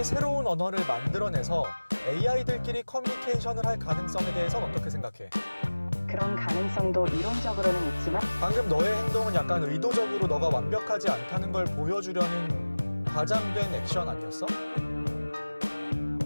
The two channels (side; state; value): both; inverted; correlation -1.00